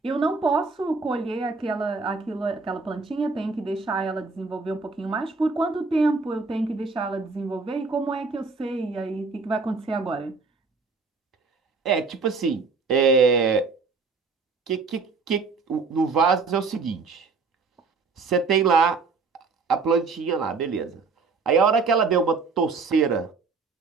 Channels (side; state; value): left; quieter; 4.4 dB